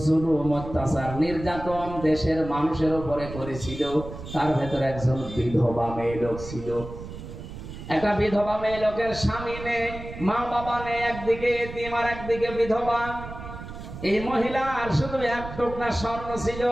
জুলুম, অত্যাচার, নির্যাতন দেশের মানুষের উপরে করেছিল, তার ভেতরে একজন বিধবা মেয়ে লোক ছিল। একটা বিধবা মেয়ে লোকের স্বামী নেই, মা বাবা নেই, একদিকে এতিম আর একদিকে বিধবা। এই মহিলার শুধু এক টুকরা স্বর্ণ ছিল,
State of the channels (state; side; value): noise; right; rumble, 11 dB below the sound